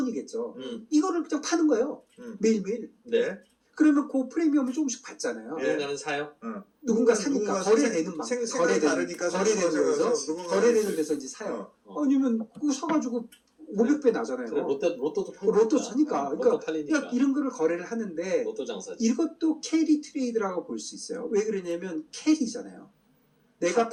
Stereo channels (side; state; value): both; identical; correlation 1.00